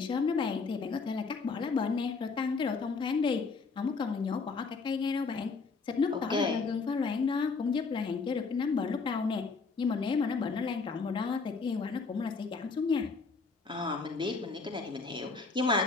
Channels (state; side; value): quieter; right; 4.5 dB